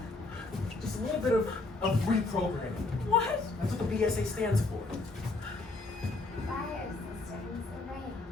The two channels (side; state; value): right; quieter; 3.3 dB